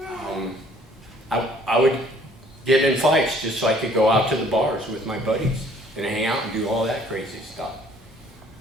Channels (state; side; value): normal; both; correlation 0.58